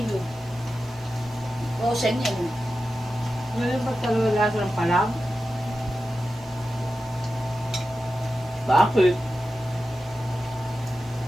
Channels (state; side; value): noise; right; hiss, 27 dB below the sound